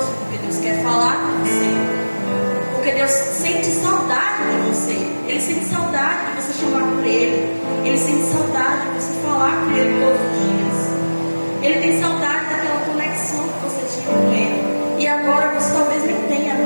porque Deus quer falar com você. Porque Deus sente saudade de você. Ele sente saudade de você chamar por Ele. Ele sente saudade de você falar com Ele todos os dias. Ele tem saudade daquela conexão que você tinha com Ele. E agora você talvez nem tenha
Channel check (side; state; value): both; inverted; correlation -1.00